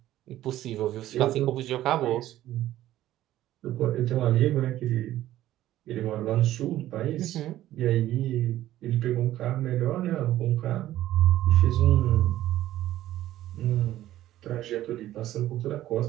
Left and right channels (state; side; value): quieter; left; 13.9 dB